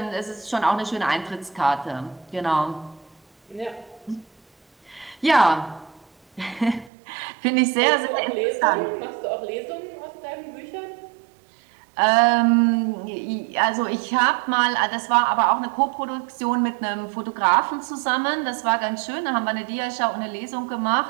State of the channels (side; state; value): left; drops out; at 6.9 s